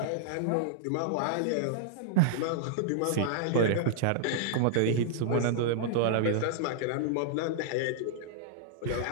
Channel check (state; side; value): different; both; correlation -0.01